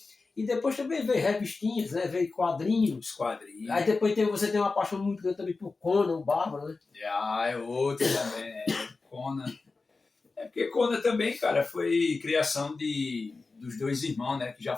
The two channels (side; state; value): right; quieter; 3.9 dB